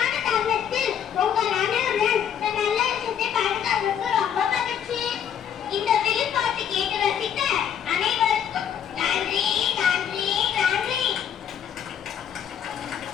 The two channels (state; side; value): quieter; right; 8.8 dB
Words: தருணத்தில் உங்கள் அனைவருடன் இந்த நல்ல விஷயத்தை பகிர்ந்ததற்கு ரொம்ப மகிழ்ச்சி. இந்த வெளிப்பாட்டு கேட்டு ரசித்த அனைவருக்கும் நன்றி நன்றி நன்றி.